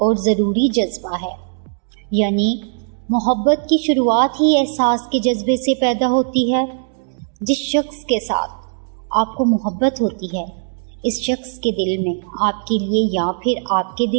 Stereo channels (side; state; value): left; silent; digital silence